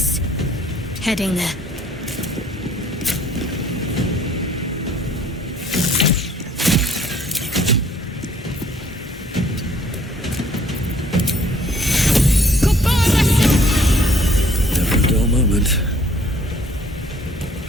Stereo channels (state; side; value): normal; both; correlation 0.59